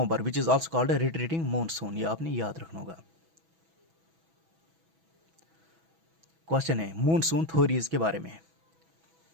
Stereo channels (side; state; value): left; late; 6.1 ms